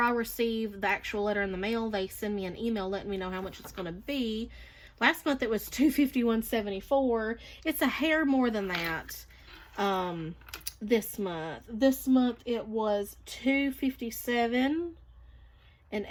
I receive the actual letter in the mail, they send me an email letting me know how much it's going to be. Last month it was $251.74. It's a hair more than that. This month it was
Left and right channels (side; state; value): both; identical; correlation 1.00